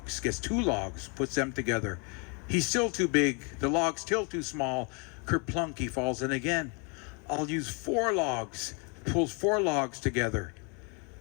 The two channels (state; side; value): quieter; right; 34.2 dB